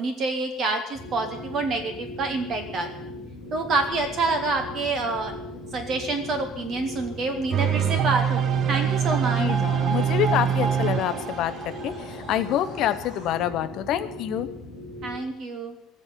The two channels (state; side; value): normal; both; correlation 0.51